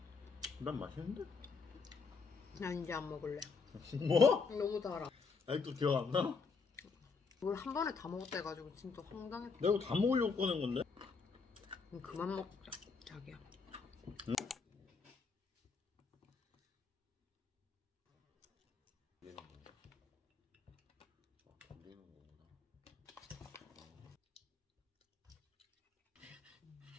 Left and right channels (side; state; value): right; quieter; 4.8 dB